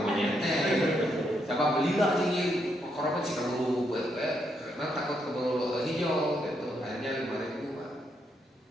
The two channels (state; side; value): normal; both; correlation 0.78